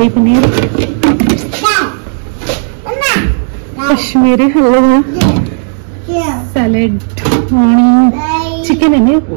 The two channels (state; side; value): silent; left; digital silence